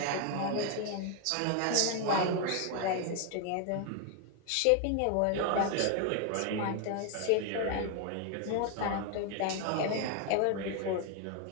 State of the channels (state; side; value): different; both; correlation 0.01